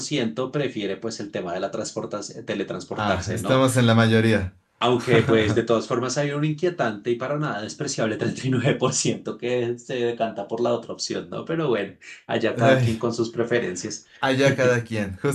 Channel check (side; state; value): both; identical; correlation 1.00